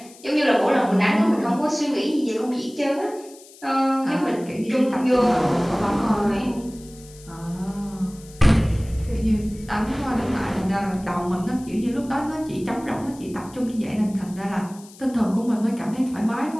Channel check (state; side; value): noise; left; hiss, 22 dB below the sound